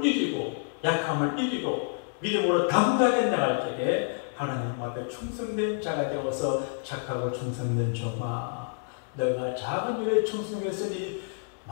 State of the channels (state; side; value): silent; right; 59 dB below the other